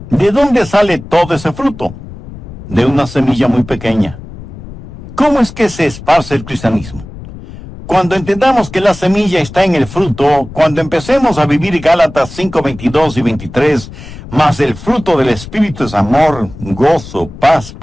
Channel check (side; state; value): left; noise; rumble, 14 dB below the sound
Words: ¿De dónde sale todo ese fruto? De una semilla muy pequeña. ¿Cómo es que se esparce el cristianismo? Cuando entendamos que la semilla está en el fruto, cuando empecemos a vivir Gálatas 5:22 y 23, más el fruto del Espíritu es amor, gozo, paz,